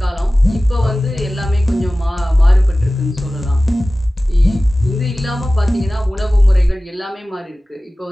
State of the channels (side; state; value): both; normal; correlation 0.97